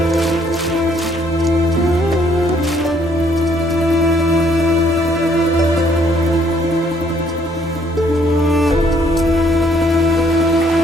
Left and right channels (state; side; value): normal; both; correlation 0.66